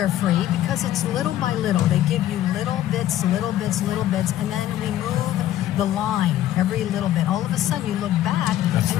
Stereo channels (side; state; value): right; quieter; 12.7 dB